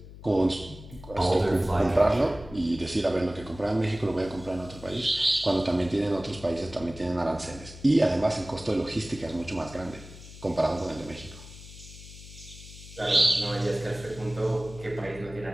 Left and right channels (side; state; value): left; noise; hum, 16 dB below the sound